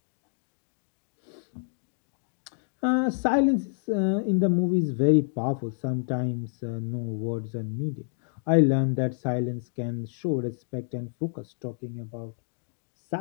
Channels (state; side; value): silent; right; digital silence